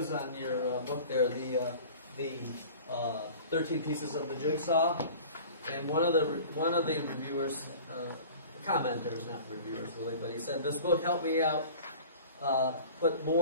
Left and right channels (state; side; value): inverted; both; correlation -0.42